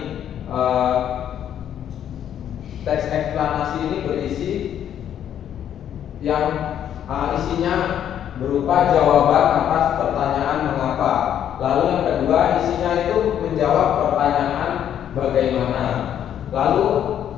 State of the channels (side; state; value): right; quieter; 10.0 dB